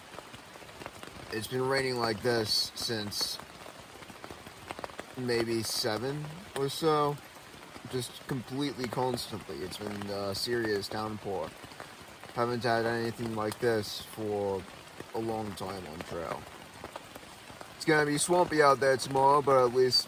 It's been raining like this since maybe 7 or so. Just completely constantly. It's been a serious downpour. Haven't had anything like this for a long time on trail. It's gonna be swampy out there tomorrow, but at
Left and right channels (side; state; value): both; identical; correlation 1.00